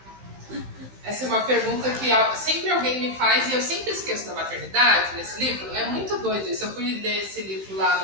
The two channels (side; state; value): left; late; 15 ms